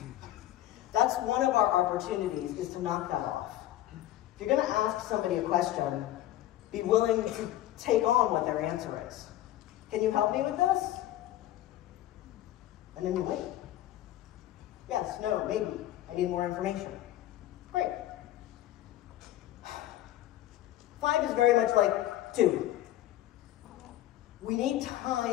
That's one of our opportunities, is to knock that off. If you're going to ask somebody a question, be willing to take on what their answer is. Can you help me with this? And then you wait. Yes, no, maybe. I need more information. Great. 5 is very much like 2. We need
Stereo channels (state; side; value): quieter; right; 13.8 dB